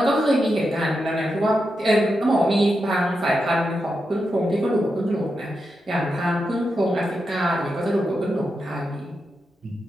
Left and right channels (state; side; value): normal; both; correlation 0.87